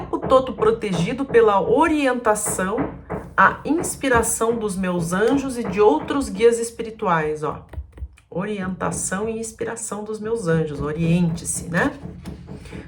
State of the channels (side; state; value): both; identical; correlation 1.00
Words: todo protegido pela orientação, a inspiração dos meus anjos e de outros guias espirituais, ó. Orientação e inspiração dos meus anjos, oriente-se, né?